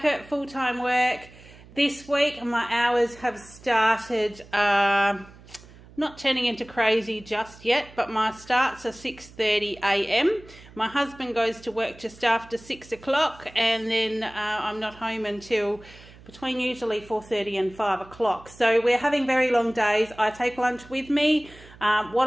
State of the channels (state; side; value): noise; right; hum, 22 dB below the sound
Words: at full-time work this week and my hours have started not turning into crazy just yet, but my starts are 6:30 a.m. My husband goes to work just after 6 o'clock and then I'm not home until between usually 4:30 and 5 o'clock. So we're having very long days. I take lunch with me. What